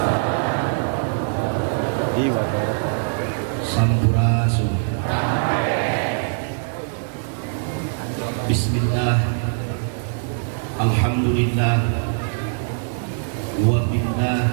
Sampurasun. Bismillah. Alhamdulillah. Wa billah.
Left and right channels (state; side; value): silent; left; 56 dB below the other